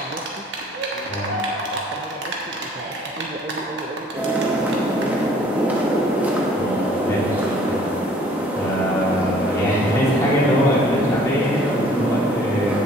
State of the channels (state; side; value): normal; both; correlation 0.56